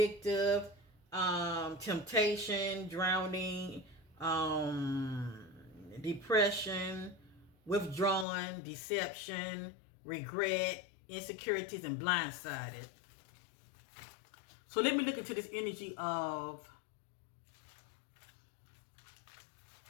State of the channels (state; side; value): drops out; right; at 8.2 s